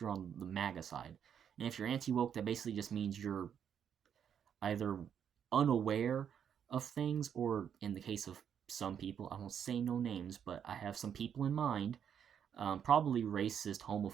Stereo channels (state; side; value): quieter; left; 8.4 dB